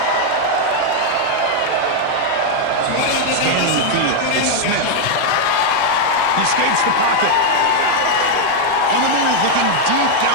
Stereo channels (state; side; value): different; both; correlation 0.00